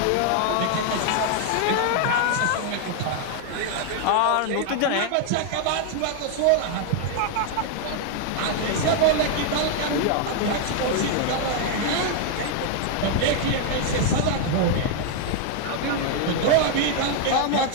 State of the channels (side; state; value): both; different; correlation 0.00